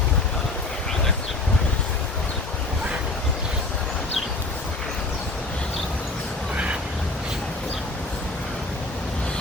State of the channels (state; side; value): quieter; right; 3.1 dB